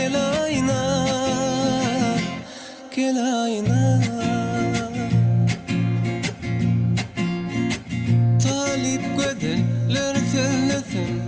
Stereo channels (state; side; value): identical; both; correlation 1.00